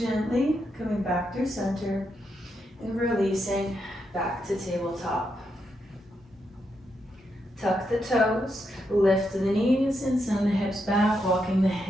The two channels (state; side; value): normal; both; correlation 0.82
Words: coming back through center and releasing back to tabletop. Tuck the toes, lift the knees and send the hips back, walking the